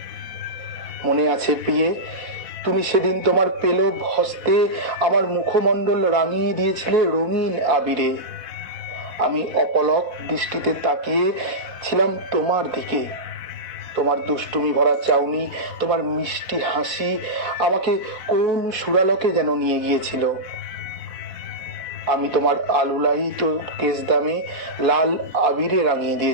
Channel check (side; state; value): left; late; 4.1 ms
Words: মনে আছে প্রিয়ে, তুমি সেদিন তোমার পেলব হস্তে আমার মুখমণ্ডল রাঙিয়ে দিয়েছিলে রঙিন আবিরে। আমি অপলক দৃষ্টিতে তাকিয়ে ছিলাম তোমার দিকে। তোমার দুষ্টুমি ভরা চাউনি, তোমার মিষ্টি হাসি আমাকে কোন সুরালকে যেন নিয়ে গিয়েছিল। আমি তোমার আলুলায়িত কেশ দামে লাল আবিরে রাঙিয়ে